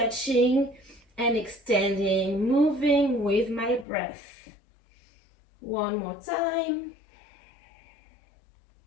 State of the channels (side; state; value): right; drops out; at 3.9 s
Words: and extending, moving with my breath. One more time.